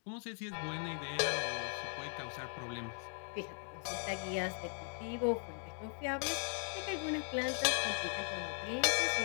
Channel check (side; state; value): right; silent; 52 dB below the other